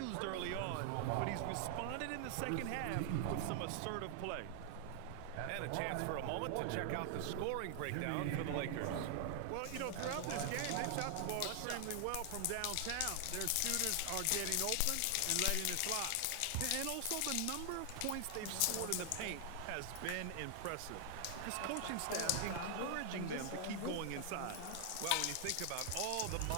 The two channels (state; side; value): different; both; correlation 0.00